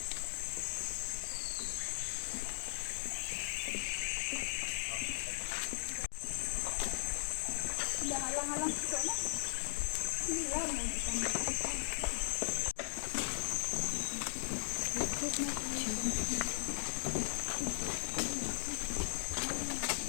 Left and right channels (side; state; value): right; silent; digital silence